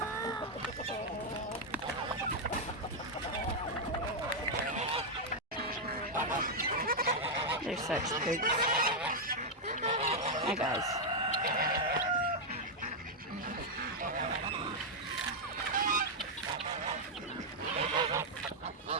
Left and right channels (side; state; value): both; normal; correlation -0.02